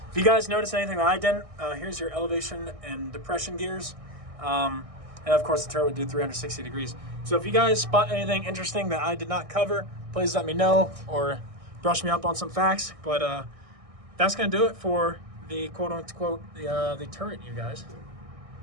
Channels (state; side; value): late; left; 1.6 ms